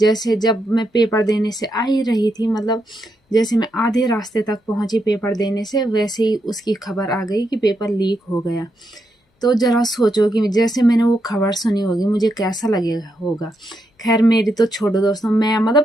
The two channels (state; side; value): normal; both; correlation 0.82